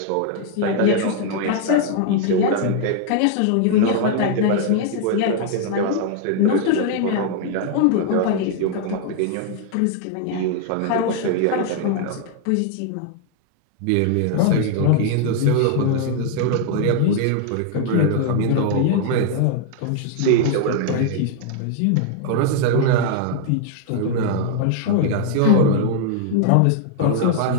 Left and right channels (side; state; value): both; different; correlation 0.00